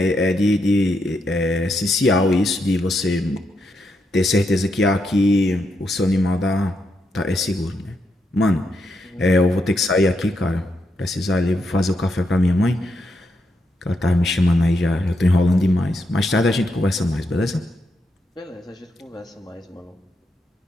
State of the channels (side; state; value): both; normal; correlation 0.81